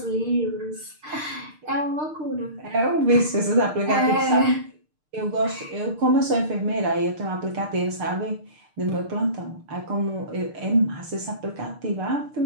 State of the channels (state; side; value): late; left; 6.6 ms